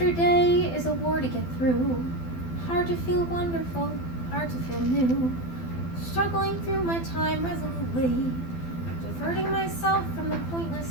day is a war to get through. Hard to feel wonderful, hard to feel new. Struggling through my time resolutely. Diverting myself from the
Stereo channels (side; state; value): right; late; 12 ms